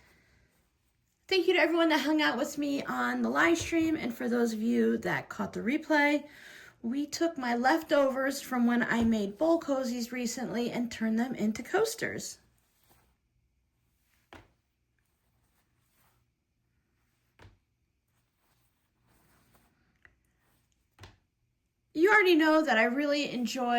Thank you to everyone that hung out with me on the live stream, and for those of you that caught the replay, we took my leftovers from when I made bowl cozies recently and turned them into coasters. You already know that I really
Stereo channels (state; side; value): identical; both; correlation 1.00